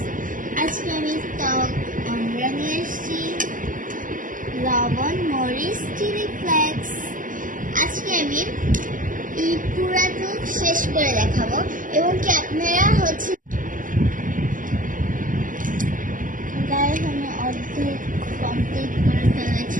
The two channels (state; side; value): late; left; 0.38 ms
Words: আজকে আমি টক আমরা নিয়ে এসেছি, লবণ, মরিচ, চিলি ফ্লেক্স। আজকে আমি এই পুরাটুক শেষ করে দেখাবো এবং কি আপনারা গায়ে আমি অর্ধেক কমপ্লিট করে